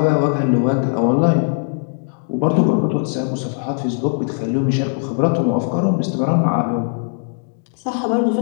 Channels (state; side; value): silent; right; digital silence